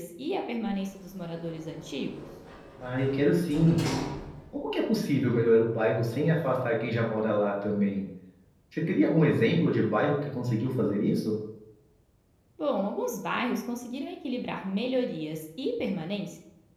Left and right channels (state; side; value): identical; both; correlation 1.00